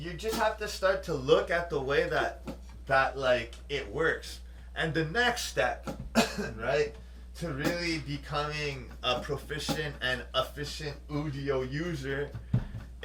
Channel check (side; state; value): both; identical; correlation 1.00